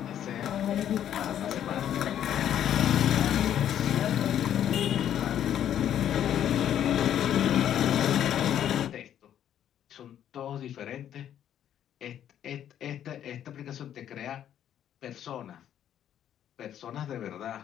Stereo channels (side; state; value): right; quieter; 10.3 dB